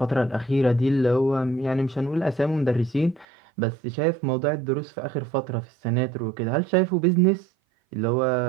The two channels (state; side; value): drops out; left; at 3.2 s